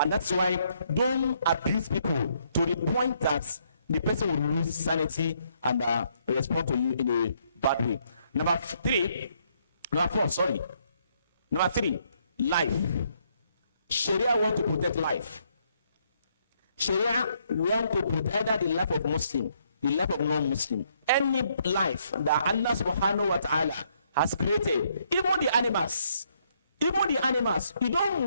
that's why don't abuse people to the point that the person will lose sanity and respond to you in a bad way. Number three, life. Sharia want to protect life. Sharia want to protect either the life of Muslim, the life of non-Muslim. Any life that Allah subhanahu wa ta'ala has created, even the animals, you don't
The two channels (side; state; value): both; inverted; correlation -0.71